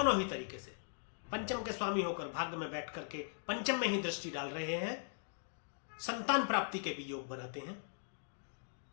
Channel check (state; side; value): silent; right; digital silence